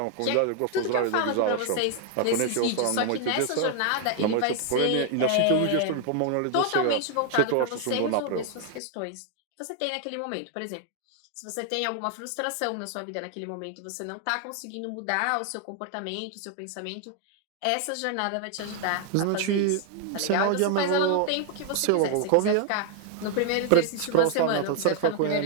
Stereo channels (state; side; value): different; both; correlation 0.00